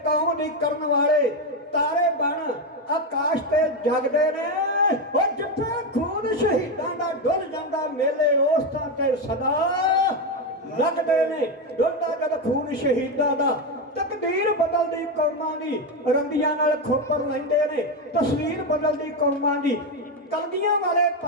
ਕੌਮ ਦੀ ਕਰਨ ਵਾਲੇ ਤਾਰੇ ਬਣ ਆਕਾਸ਼ ਤੇ ਜਗਦੇ ਨੇ, ਉਹ ਜਿੱਥੇ ਖੂਨ ਸ਼ਹੀਦਾਂ ਦਾ ਡੁੱਲ ਜਾਂਦਾ ਮੇਲੇ ਉਸ ਥਾਂ ਤੇ ਸਦਾ ਲੱਗਦੇ ਨੇ, ਡੁੱਲਦਾ ਜਦ ਖੂਨ ਸ਼ਹੀਦਾਂ ਦਾ, ਤਕਦੀਰ ਬਦਲਦੀ ਕੌਮਾਂ ਦੀ, ਰੰਦੀਆਂ ਨਾਲ ਖੋਪਰ ਲੈਂਦੇ ਨੇ, ਤਸਵੀਰ ਬਦਲਦੀ ਕੌਮਾਂ ਦੀ। ਕਲਗੀਆਂ ਵਾਲੇ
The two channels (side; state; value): both; normal; correlation 0.10